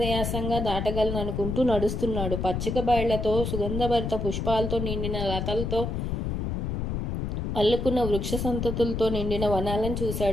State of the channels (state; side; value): noise; left; rumble, 2 dB below the sound